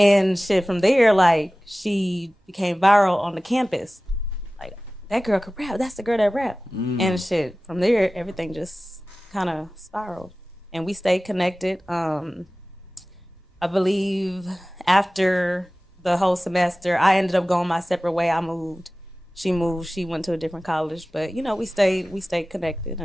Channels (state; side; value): normal; both; correlation 0.97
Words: shit from there, like, she became viral on the campus. Like, that girl could rap. That's the girl that rap. And shit, from there, everything just kind of spiraled. And we stayed connected. I believe after the whole semester, I ended up going my separate way. I moved. She moved. She went to a different college. But, we stayed connected,